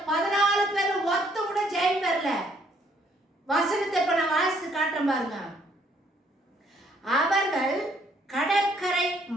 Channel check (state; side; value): normal; both; correlation 0.67